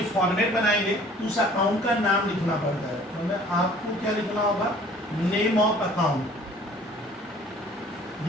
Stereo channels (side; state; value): both; normal; correlation 0.52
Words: फॉर्मेट बनाएंगे तो उस अकाउंट का नाम लिखना पड़ता है। तो मैं आपको क्या लिखना होगा, नेम ऑफ अकाउंट।